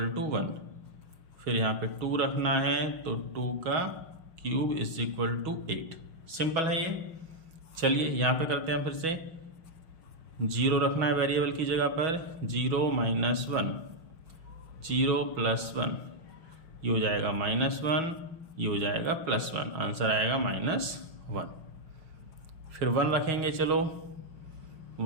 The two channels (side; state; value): left; late; 6.2 ms